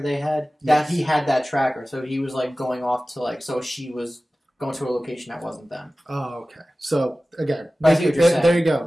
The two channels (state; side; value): normal; both; correlation 0.97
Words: had? That he had that tracker, so he was like going off to like, so she was going to a location that wasn't them. Oh, okay. So again, there you go.